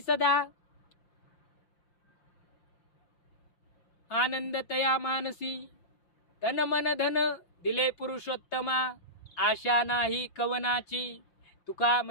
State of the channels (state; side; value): late; right; 6.1 ms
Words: सदा, आनंद तया मानसी. तन मन धन दिले पुरुषोत्तमा, आशा नाही कवनाची. तुका